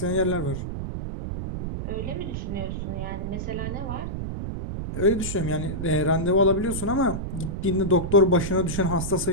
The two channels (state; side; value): noise; right; rumble, 5 dB below the sound